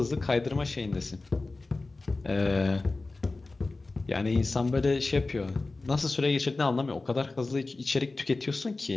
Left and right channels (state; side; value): quieter; right; 3.4 dB